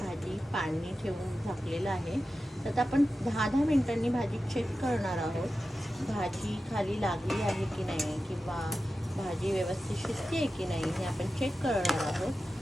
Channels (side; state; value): both; normal; correlation 0.93